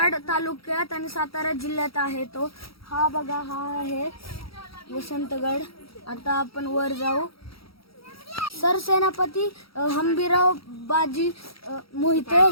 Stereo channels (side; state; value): right; late; 0.75 ms